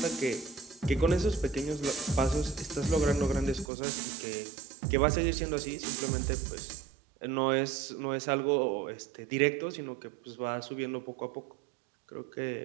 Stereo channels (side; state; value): left; drops out; at 3.7 s